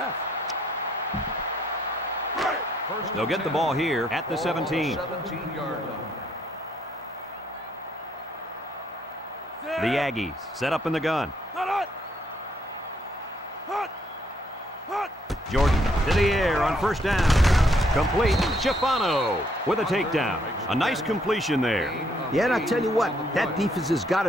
They'll get the ball here at the 17. 17-yard line. The Aggies set up in the gun. Jordan to the air on first down. Complete. Schifano with a takedown. A nice completion there. Yeah, and I'll tell you what, that defense has got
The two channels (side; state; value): both; normal; correlation 0.70